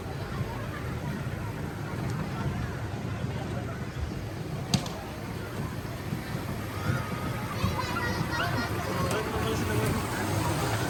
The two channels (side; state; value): both; identical; correlation 1.00